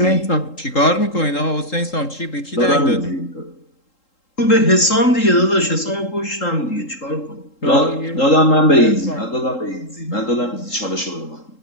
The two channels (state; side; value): late; right; 3.8 ms